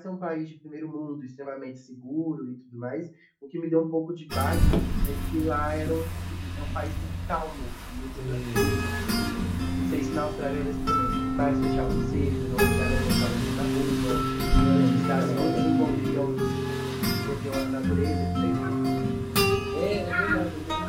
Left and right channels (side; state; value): both; identical; correlation 1.00